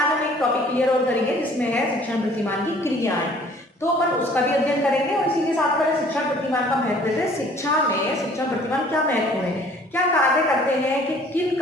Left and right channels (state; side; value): normal; both; correlation 0.54